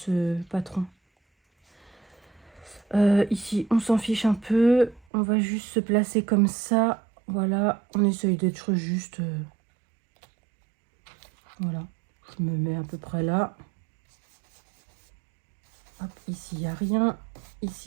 patron. Ici, on s'en fiche un peu. On va juste se placer comme ça. Voilà, on essaye d'être juste... Voilà, je me mets à peu près là. Hop, ici, il n'y a rien.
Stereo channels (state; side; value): drops out; left; at 5.0 s